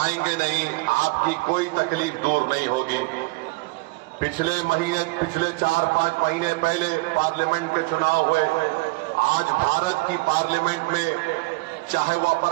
नहीं, आपकी कोई तकलीफ दूर नहीं होगी। पिछले 4-5 महीने पहले पार्लियामेंट के चुनाव हुए। आज भारत की पार्लियामेंट में चाहे वह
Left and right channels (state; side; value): quieter; left; 25.3 dB